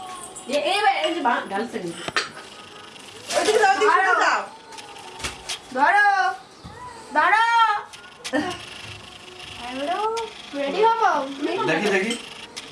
এই যে গালছে নি ওইদিকে যাও ওইদিকে যাও ধরো ধরো হ্যালো রেডি হবো দেখি দেখি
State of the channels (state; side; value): identical; both; correlation 1.00